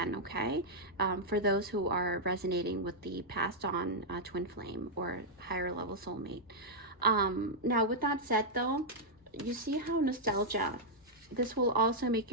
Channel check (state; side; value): normal; both; correlation -0.06